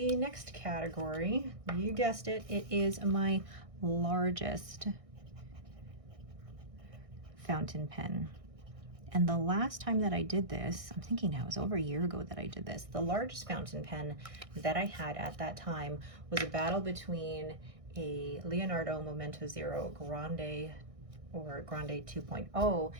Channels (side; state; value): left; late; 1.6 ms